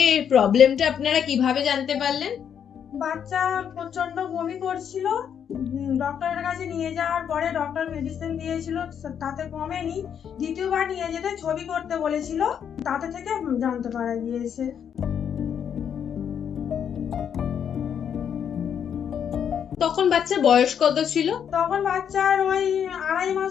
প্রবলেমটা আপনারা কিভাবে জানতে পারলেন? বাচ্চা প্রচন্ড বমি করছিল। ডক্টরের কাছে নিয়ে যাওয়ার পরে ডক্টর মেডিসিন দিয়েছিল, তাতে কমেনি। দ্বিতীয়বার নিয়ে যেতে ছবি করতে বলেছিল, তাতে থেকে জানতে পারা গিয়েছে। তখন বাচ্চার বয়স কত ছিল? তখন বাচ্চার ওই 2.5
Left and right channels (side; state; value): right; quieter; 8.3 dB